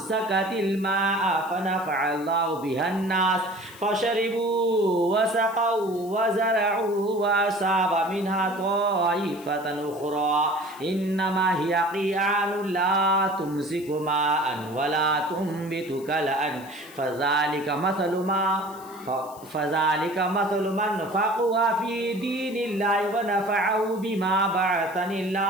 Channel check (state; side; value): noise; left; hiss, 21 dB below the sound